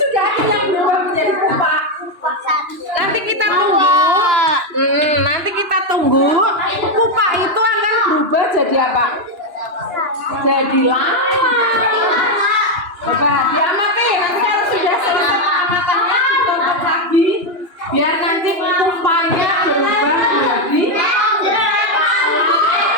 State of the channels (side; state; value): left; late; 2.9 ms